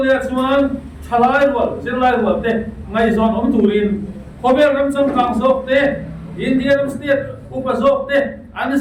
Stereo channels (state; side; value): identical; both; correlation 1.00